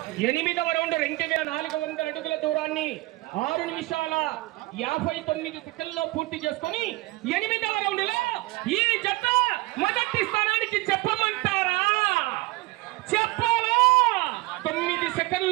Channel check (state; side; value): quieter; left; 21.3 dB